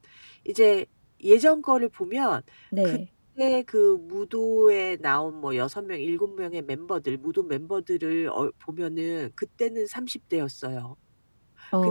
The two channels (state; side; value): inverted; both; correlation -1.00